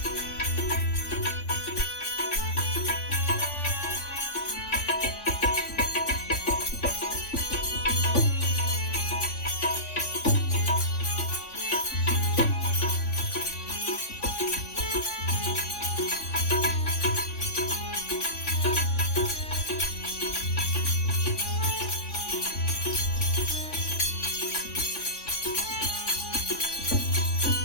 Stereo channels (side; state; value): right; late; 3.5 ms